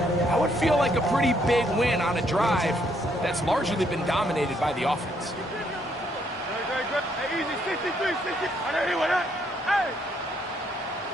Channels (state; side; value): normal; both; correlation 0.71